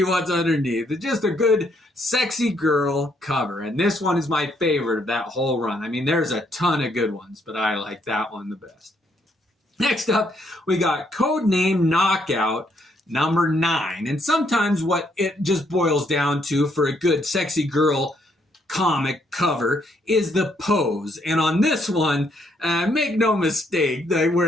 what's underneath. It's just a good, sexy girl cover. And this one is my favorite of that whole run. I mean, there's a ton of good ones, but I like that one the best. Next up, we got Codename Knockout number 9. And sometimes what it just boils down to for a good sexy girl comic cover is the pose. And on this one, make no mistake,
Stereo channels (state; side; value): normal; both; correlation 0.72